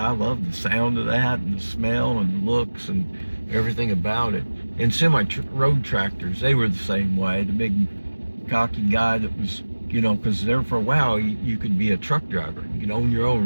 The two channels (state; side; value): inverted; both; correlation -1.00